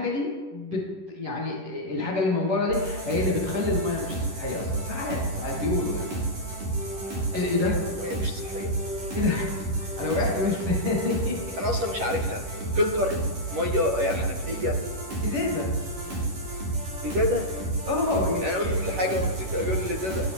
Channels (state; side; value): late; left; 11 ms